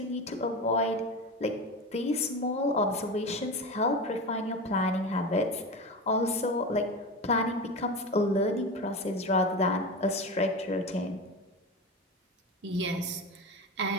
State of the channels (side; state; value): both; normal; correlation 0.25